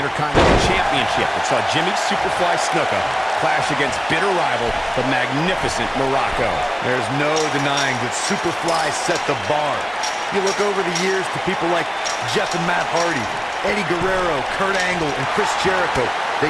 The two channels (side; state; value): both; identical; correlation 1.00